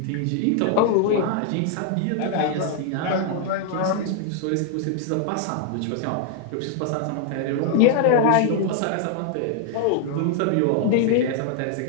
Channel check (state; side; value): different; both; correlation 0.00